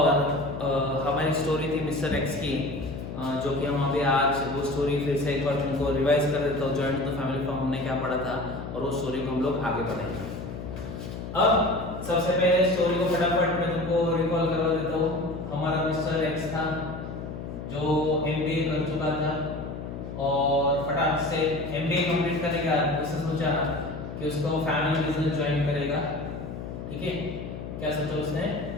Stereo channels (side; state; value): left; noise; hum, 8 dB below the sound